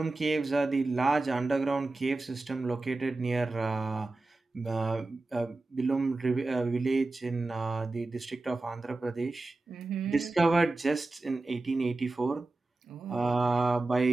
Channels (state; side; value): quieter; left; 3.1 dB